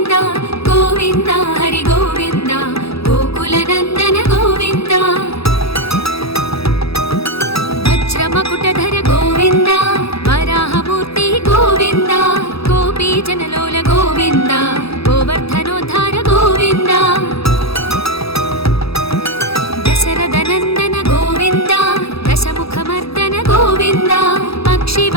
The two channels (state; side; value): late; right; 0.77 ms